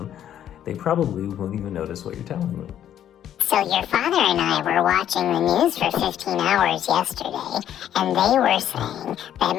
they probably won't even notice what you're telling them. So your father and I were watching the news for 15 hours yesterday, and they were saying that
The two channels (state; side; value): quieter; right; 10.6 dB